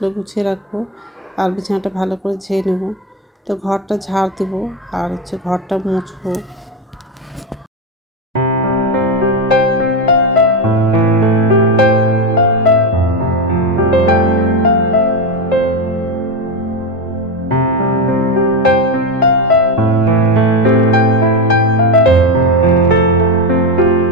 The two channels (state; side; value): normal; both; correlation 0.13